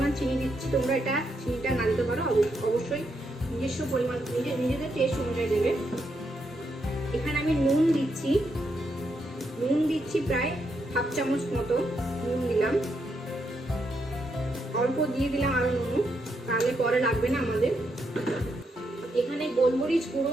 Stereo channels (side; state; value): both; normal; correlation 0.80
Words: চিনি দিচ্ছি। তোমরা চিনিটা না দিতে পারো, অবশ্যই নিজস্ব পরিমাণ নিজেদের টেস্ট অনুযায়ী দেবে। এখানে আমি নুন দিচ্ছি প্রায় 1/2 চামচ মতো নুন দিলাম। অল্প দিয়ে দিলাম আরো নুন, তাহলে পরে লাগবে না আমাদের। এখানে গোলমরিচ গুঁড়ো